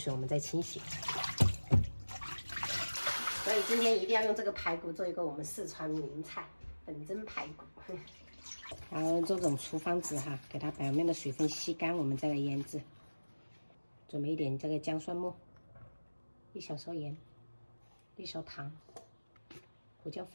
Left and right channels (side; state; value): both; inverted; correlation -1.00